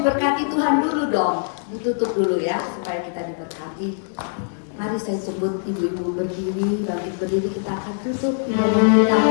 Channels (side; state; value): right; silent; digital silence